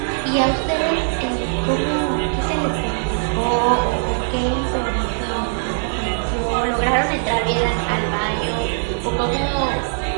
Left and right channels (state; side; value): silent; left; digital silence